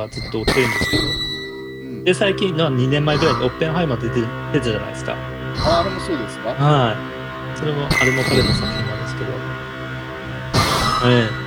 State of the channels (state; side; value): identical; both; correlation 1.00